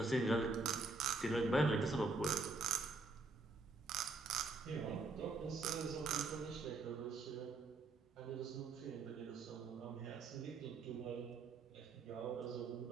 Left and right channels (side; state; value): left; quieter; 3.6 dB